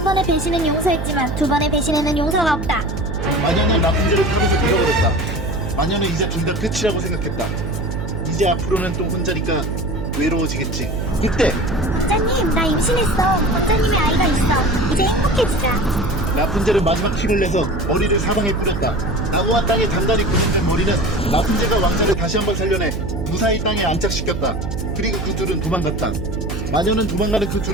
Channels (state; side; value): noise; right; hum, 4 dB below the sound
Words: 번의 배신은 용서했지만 두 번의 배신에는 용서가 없다. 마녀는 라푼젤을 탑에서 밀어버렸다. 마녀는 이제 둘 다 끝이라고 생각했다. 이제 앞으로는 또 혼자니까 외로워지겠지. 이때 왕자님, 나 임신했어. 왕자님의 아이가 있어. 이제 행복해지자. 라푼젤은 마지막 힘을 내서 머리를 사방에 뿌렸다. 나무와 땅에 단단히 고정된 머리는 라푼젤과 왕자를 다시 한번 살려내 무사히 땅에 안착시켰다. 그리고 그 둘은 도망갔다. 마녀는 도망가는 그